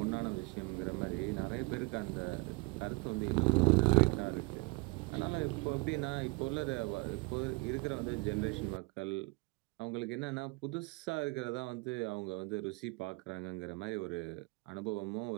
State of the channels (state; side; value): quieter; left; 28.7 dB